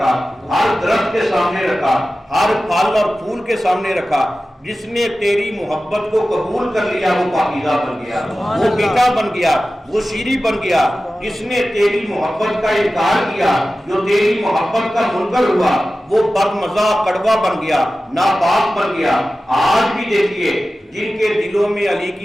ہر درخت کے سامنے رکھا، ہر پھل اور پھول کے سامنے رکھا، جس نے تیری محبت کو قبول کر لیا وہ پاکیزہ بن گیا، وہ میٹھا بن گیا، وہ شیریں بن گیا۔ جس نے تیری محبت کا انکار کیا، جو تیری محبت کا منکر ہوا، وہ بدمزہ کڑوا بن گیا، ناپاک بن گیا۔ آج بھی دیکھیے جن کے دلوں میں علی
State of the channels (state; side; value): normal; both; correlation 0.95